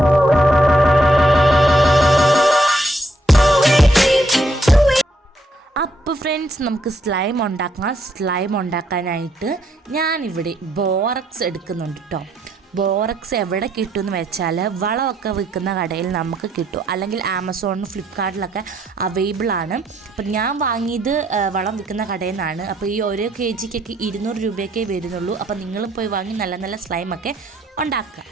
അപ്പോൾ ഫ്രണ്ട്സ്, നമുക്ക് സ്ലൈം ഉണ്ടാക്കാനായിട്ട് ഞാനിവിടെ ബോറക്സ് എടുക്കുന്നുണ്ട് കേട്ടോ. ബോറക്സ് എവിടെ കിട്ടുമെന്ന് വെച്ചാൽ വളമൊക്കെ വിൽക്കുന്ന കടയിൽ നമുക്ക് കിട്ടും, അല്ലെങ്കിൽ ആമസോണിലും ഫ്ലിപ്കാർട്ടിലൊക്കെ അവൈലബിൾ ആണ്. അപ്പം ഞാൻ വാങ്ങിയത് വളം വിൽക്കുന്ന കടയിൽ നിന്നാണ്. അപ്പോൾ ഈ ഓരോ kgക്കൊക്കെ 200 രൂപയൊക്കെ വരുന്നുള്ളൂ. അപ്പോൾ നിങ്ങളും പോയി വാങ്ങി നല്ല നല്ല സ്ലൈമൊക്കെ ഉണ്ടാക്കുക.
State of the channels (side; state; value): both; normal; correlation 0.73